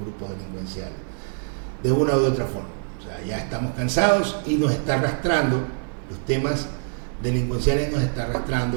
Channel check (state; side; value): silent; left; 62 dB below the other